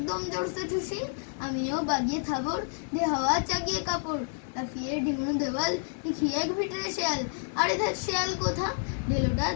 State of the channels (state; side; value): silent; right; 58 dB below the other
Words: জোরসে ঠুসি। আমিও বাগিয়ে থাবর, দে হাওয়া চাগিয়ে কাপড়, লাফিয়ে ডিঙনো দেওয়াল, দেখি এক ভিতরে শেয়াল। আরে ধ্যাৎ শেয়াল কোথা, ঢেলোটা